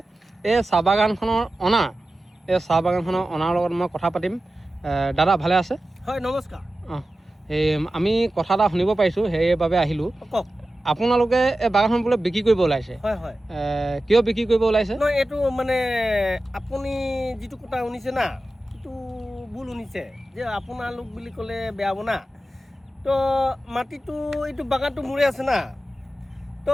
এই চাহ বাগানখনৰ অনাৰ, এই চাহ বাগানখনৰ অনাৰ লগত মই কথা পাতিম। দাদা ভালে আছে? হয়, নমস্কাৰ। এই আমি কথা এটা শুনিব পাৰিছোঁ, সেইবাবে আহিলোঁ। কওক। আপোনালোকে এই বাগানখন বোলে বিক্ৰী কৰিব ওলাইছে? হয় হয়। কিয় বিক্ৰী কৰিব ওলাইছে? নহয়, এইটো মানে আপুনি যিটো কথা শুনিছে না, সেইটো ভুল শুনিছে। যে আপোনালোক বুলি ক'লে বেয়া হ'ব না। তো মাটিটো এইটো বাগানটো মোৰে আছে না।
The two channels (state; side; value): normal; both; correlation 0.94